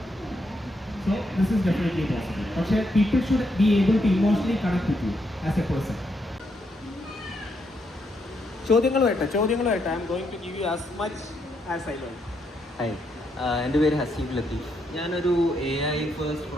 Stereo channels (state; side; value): normal; both; correlation 0.78